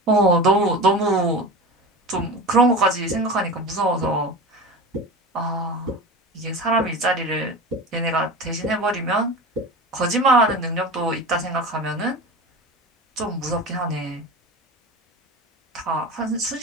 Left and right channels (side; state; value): both; normal; correlation 0.30